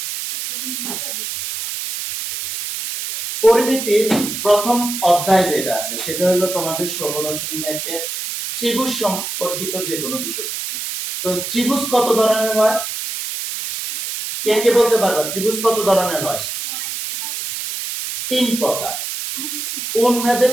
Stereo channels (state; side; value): noise; right; hiss, 5 dB below the sound